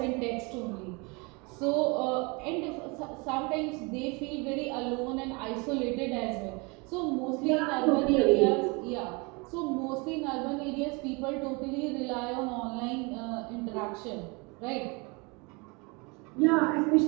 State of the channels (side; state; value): left; quieter; 29.0 dB